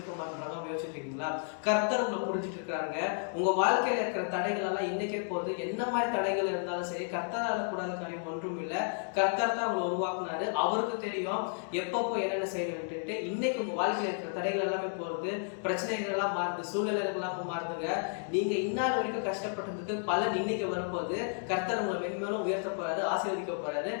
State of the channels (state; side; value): silent; right; 56 dB below the other